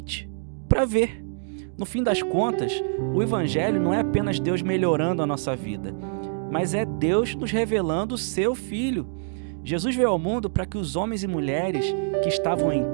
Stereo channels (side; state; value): left; silent; digital silence